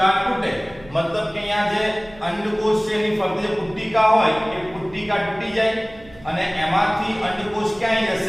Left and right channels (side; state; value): right; noise; hum, 22 dB below the sound